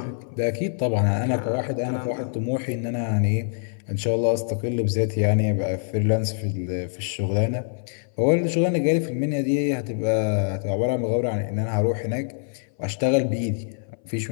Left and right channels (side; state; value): right; silent; 59 dB below the other